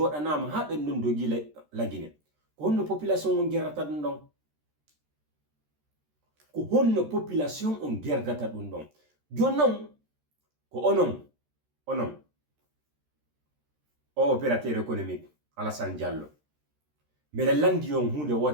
ha ben don dogi lagine ko honno population on gerata dum don ko honno population on gerdata dum don jonnon ko onon o opérateur économique Alassane Diallo mele landi on hunde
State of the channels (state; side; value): late; left; 13 ms